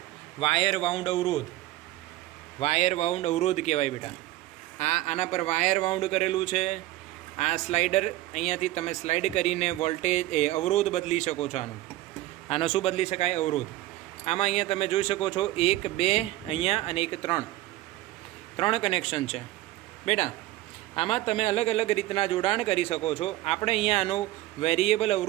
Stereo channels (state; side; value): quieter; left; 16.3 dB